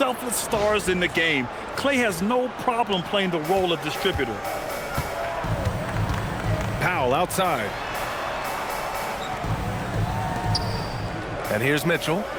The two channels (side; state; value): both; identical; correlation 1.00